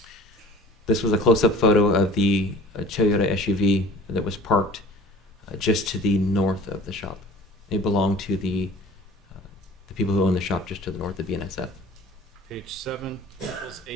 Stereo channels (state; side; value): normal; both; correlation 0.45